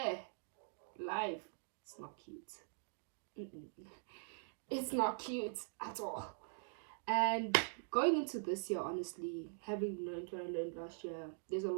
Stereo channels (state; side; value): silent; left; digital silence